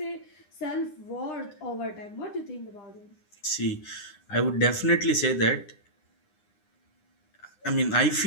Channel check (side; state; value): right; late; 9.9 ms